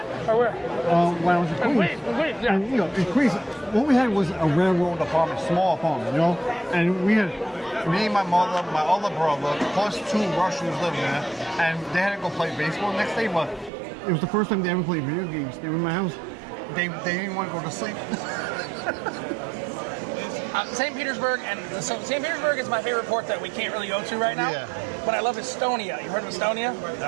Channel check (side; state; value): left; drops out; at 13.7 s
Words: Or where? When I was in Queens. Queens, yeah. And in Queens, what we had was a railroad apartment, small apartment, and we had me, my mother, my older brother, plus two Russians living there, and they had to go play baseball the next day, but it was the first time they ever played video games. They were in my house. they didn't want to go to sleep. St. Petersburg, and so St. Petersburg is my favorite port that we can't really go to right now. Yeah. But I love Estonia. You heard of Estonia?